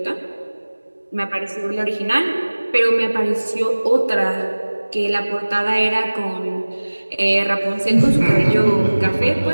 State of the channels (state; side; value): inverted; both; correlation -1.00